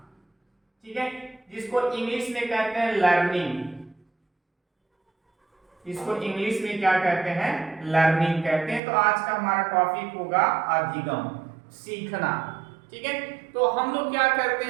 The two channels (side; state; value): left; drops out; at 8.8 s